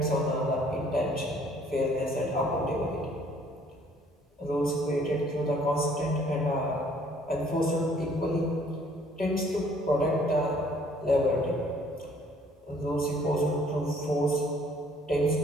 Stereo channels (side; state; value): both; normal; correlation 0.60